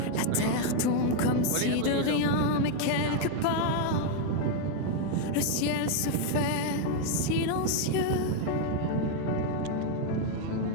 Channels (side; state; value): both; different; correlation 0.01